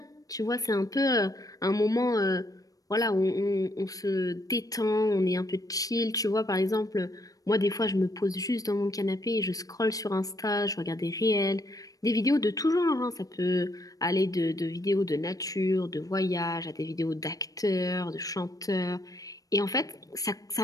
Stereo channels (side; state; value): right; late; 0.17 ms